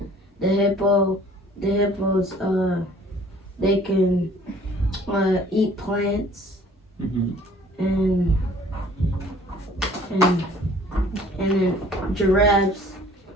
the hippos they can eat plants, Mm-hmm. and then giraffes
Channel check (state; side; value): normal; both; correlation 0.54